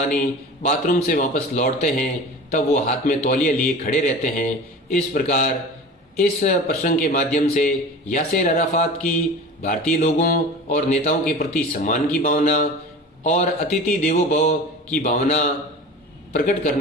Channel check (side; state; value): both; normal; correlation 0.36